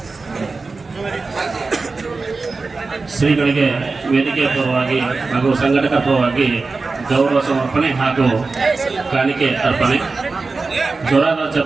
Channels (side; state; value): left; quieter; 4.0 dB